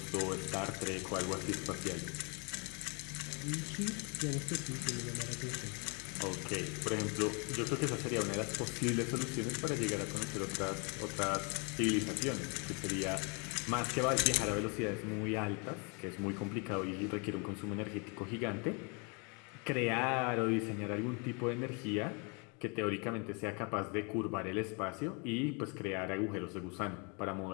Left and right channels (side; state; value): right; quieter; 33.6 dB